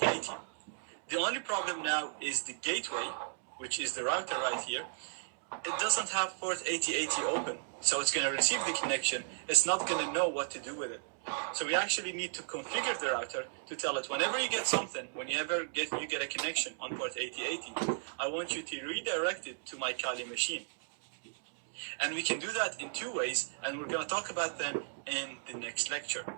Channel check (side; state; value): left; silent; digital silence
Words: The only problem now is the gateway, which is the router right here. It doesn't have port 8080 open, so it's going to receive the connection. It's not going to know what to do with it. So we actually need to configure the router to tell it whenever you get something, whenever you get a connection on port 8080, I want you to redirect it to my Kali machine. And we can do that in two ways, and we're going to talk about them in the next lecture.